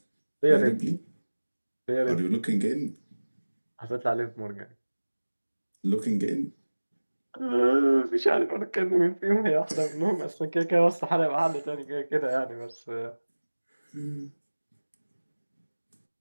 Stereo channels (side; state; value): both; inverted; correlation -1.00